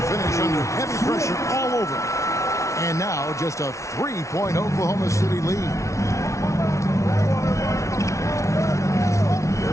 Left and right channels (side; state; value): right; late; 0.14 ms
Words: finish under heavy pressure all over. And now just a 3-point Oklahoma City lead.